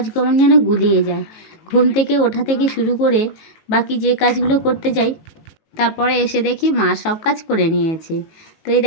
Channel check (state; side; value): late; right; 18 ms